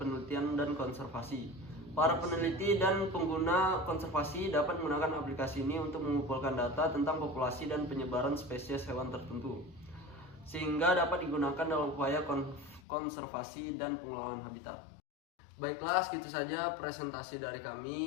dan konservasi. Para peneliti dan pengguna konservasi dapat menggunakan aplikasi ini untuk mengumpulkan data tentang populasi dan penyebaran spesies hewan tertentu, sehingga dapat digunakan dalam upaya konservasi dan pengelolaan habitat. Baiklah, segitu saja presentasi dari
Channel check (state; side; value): drops out; right; at 12.8 s